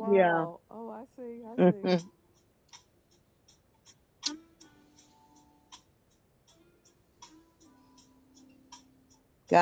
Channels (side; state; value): both; identical; correlation 1.00